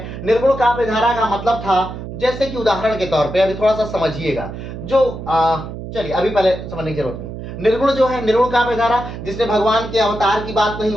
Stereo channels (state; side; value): noise; right; hum, 9 dB below the sound